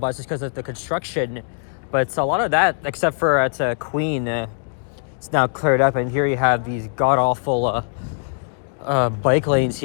because of the construction. But a lot of that, except for at Queen, it's now cleared up. And here you have these god-awful bike lanes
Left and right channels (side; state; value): right; silent; 65 dB below the other